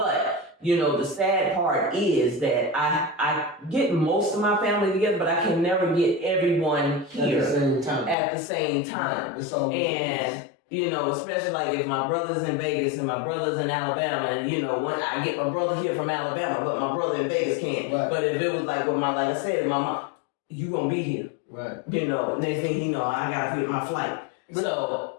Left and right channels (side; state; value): right; drops out; at 8.2 s